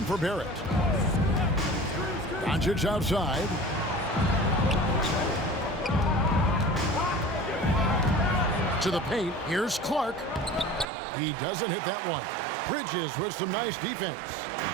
for Barrett. Doncic outside. To the paint. Here's Clark. He doesn't hit that one. Bridges with some nice defense.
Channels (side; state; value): left; drops out; at 10.9 s